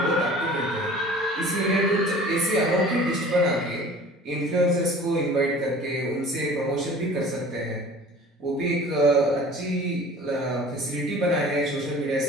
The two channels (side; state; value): both; normal; correlation 0.45